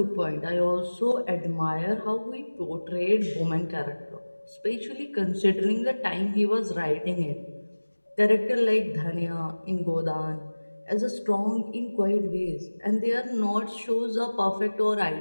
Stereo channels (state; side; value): inverted; both; correlation -1.00